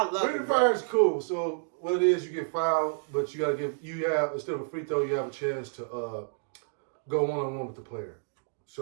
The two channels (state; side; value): silent; left; digital silence